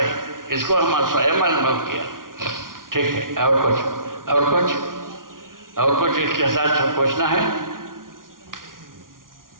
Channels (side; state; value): left; late; 0.90 ms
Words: इसको हम स्वयं अनुभव किया। ठीक है, और कुछ इसके साथ पूछना है?